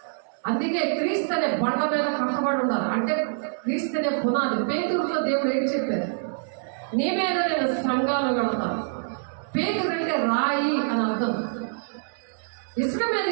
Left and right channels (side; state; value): left; silent; digital silence